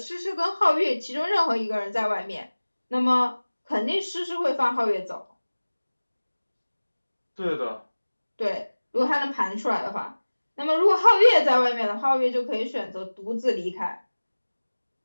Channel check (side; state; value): both; inverted; correlation -1.00